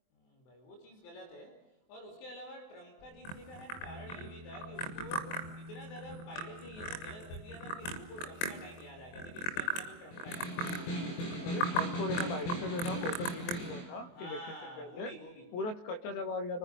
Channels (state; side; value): late; right; 23 ms